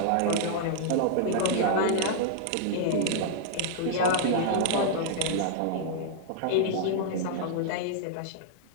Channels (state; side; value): different; both; correlation -0.01